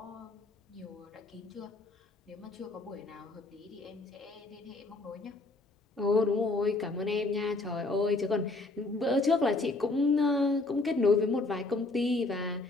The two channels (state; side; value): quieter; right; 3.1 dB